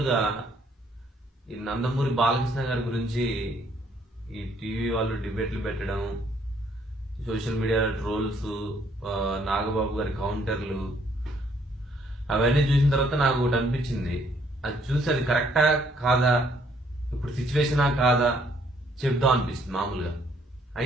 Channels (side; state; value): both; normal; correlation 0.67